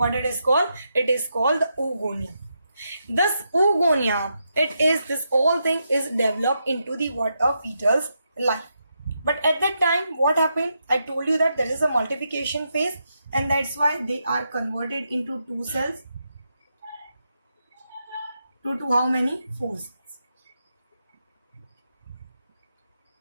it is called? It is called the oogonia. This oogonia, this whole thing is developed into the fetal's life. But at that time, what happened? I told you that there is a multiplication phase, and that's why they are converted into two cells. To how many? 4 cells.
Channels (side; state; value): both; inverted; correlation -0.83